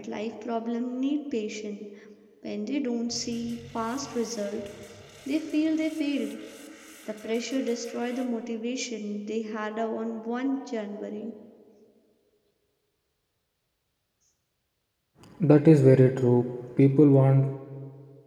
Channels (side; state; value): both; identical; correlation 1.00